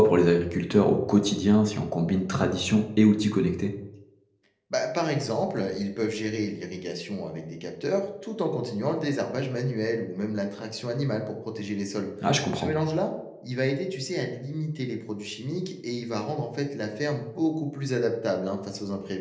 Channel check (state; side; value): identical; both; correlation 1.00